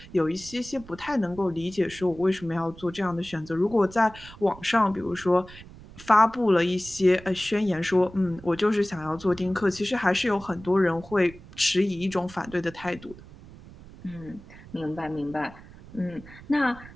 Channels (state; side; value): noise; right; rumble, 19 dB below the sound